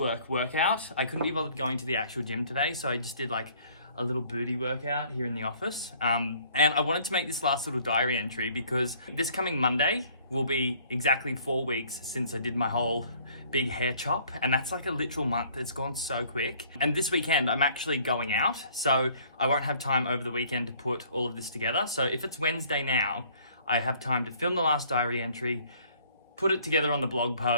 workout. I couldn't be bothered going to the actual gym today, so I just did like a little booty workout here in the office. And I wanted to make this last little diary entry because this coming Monday will be exactly 4 weeks since I did my whole big hair chop, and that's like a literal month. It's gone so quick. And this weekend I'm actually going out, so I won't have time over the weekend to put all of this together. So if it's Wednesday now, I have time to film the last diary entry, put it together on the blog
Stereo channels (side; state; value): both; inverted; correlation -0.58